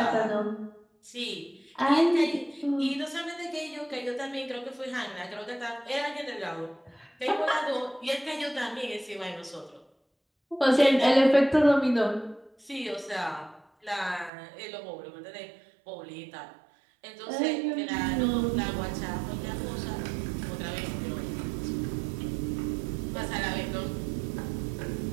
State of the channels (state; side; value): drops out; left; at 14.3 s